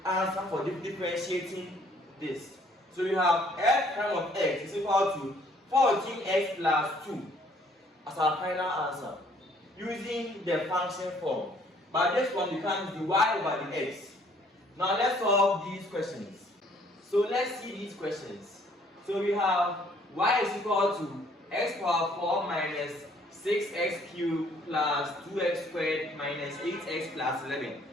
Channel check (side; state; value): both; normal; correlation 0.61